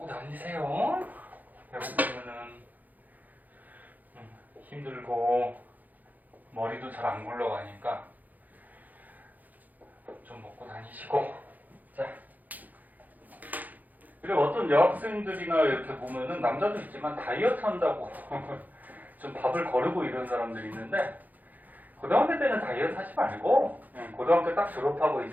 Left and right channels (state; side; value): late; left; 0.082 ms